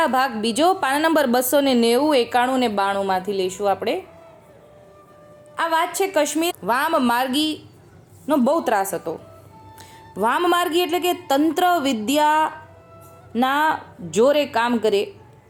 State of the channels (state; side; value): identical; both; correlation 1.00